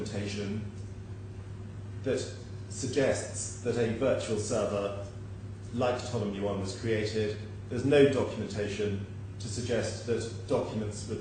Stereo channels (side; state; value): both; identical; correlation 1.00